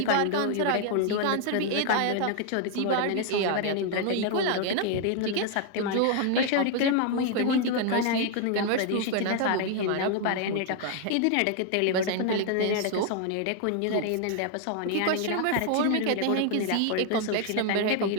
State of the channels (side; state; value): both; different; correlation 0.00